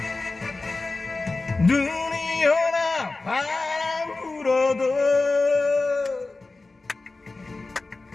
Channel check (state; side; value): quieter; right; 3.4 dB